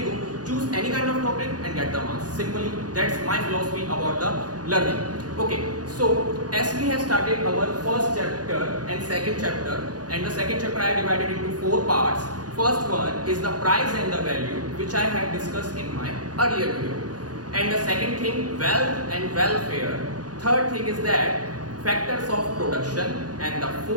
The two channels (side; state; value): left; late; 0.69 ms